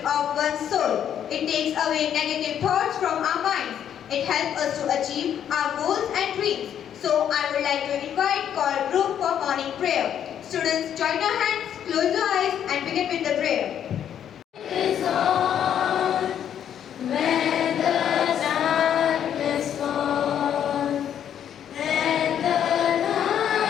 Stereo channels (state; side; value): quieter; right; 9.5 dB